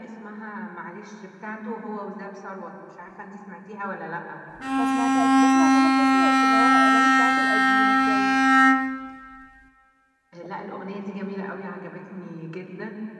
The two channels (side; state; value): both; identical; correlation 1.00